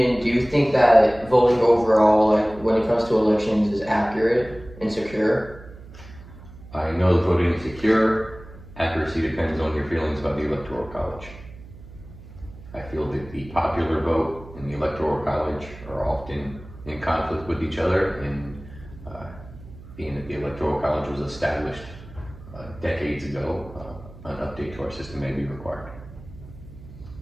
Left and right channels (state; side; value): noise; right; hum, 18 dB below the sound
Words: do you think that voting overall, like when it comes to elections, is accurate and secure? I know that voting is secure. Accuracy depends on your feelings about the Electoral College. I feel that the popular vote and the Electoral College are often in conflict with each other, and being that the Electoral College was established decades ago, an update to our system may be required.